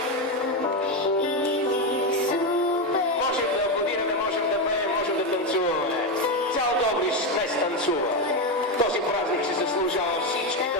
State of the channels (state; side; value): normal; both; correlation 0.10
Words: Можем да аплодираме, можем да пеем, можем да танцуваме. Цял Добрич днес танцува. Този празник се заслужава всички